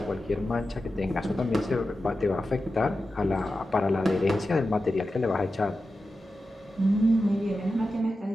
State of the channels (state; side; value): normal; both; correlation 0.92